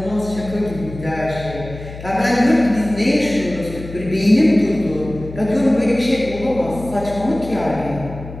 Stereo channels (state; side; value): noise; left; hum, 13 dB below the sound